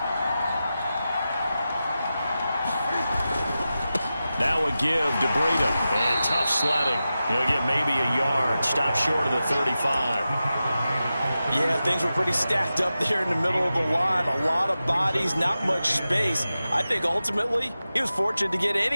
Now a give to Breida. And tough sledding. He'll get maybe a yard. Stop short of the 35. Yeah, things were pretty stacked up there in the middle of the line. A lot of bodies, not much space. I think ultimately he was fortunate to get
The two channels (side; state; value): both; inverted; correlation -0.93